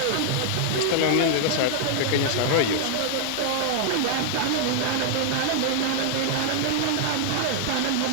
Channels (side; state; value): both; different; correlation -0.01